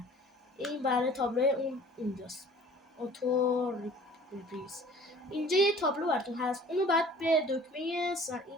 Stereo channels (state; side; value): normal; both; correlation 0.49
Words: این برای تابلو اون اینجاست، اوتو ریپریز. اینجا یه تابلو براتون هست، اونو بعد به دکمه